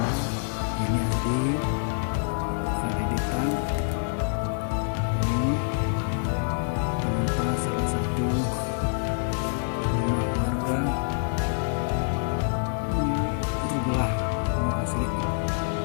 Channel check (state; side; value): silent; right; digital silence